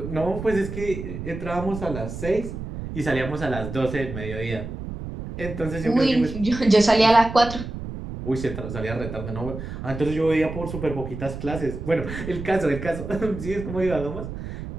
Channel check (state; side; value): noise; right; rumble, 8 dB below the sound